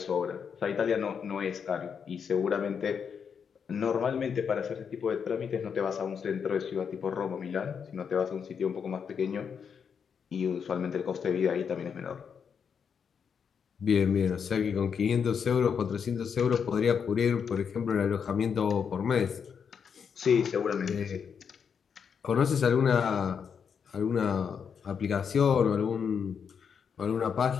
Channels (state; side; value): quieter; right; 6.8 dB